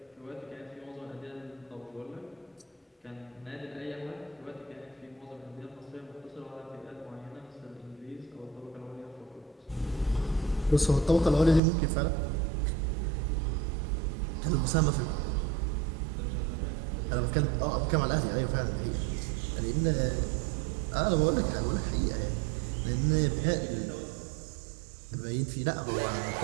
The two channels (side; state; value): left; drops out; at 11.6 s